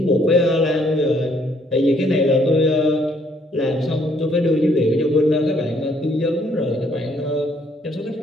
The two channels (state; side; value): normal; both; correlation 0.66